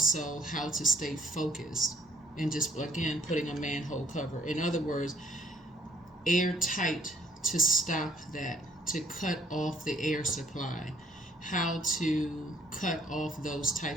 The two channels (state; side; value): normal; both; correlation 0.62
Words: how to stay focused, and just again putting a manhole cover. In other words, airtight, to stop that, to cut off the air supply, how to cut off those